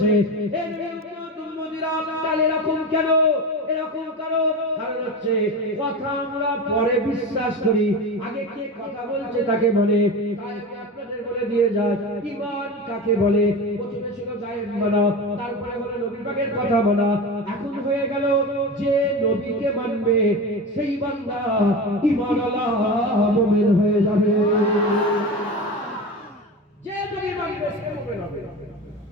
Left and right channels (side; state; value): both; normal; correlation 0.26